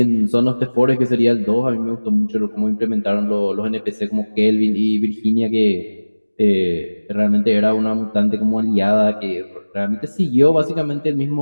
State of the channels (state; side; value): inverted; both; correlation -1.00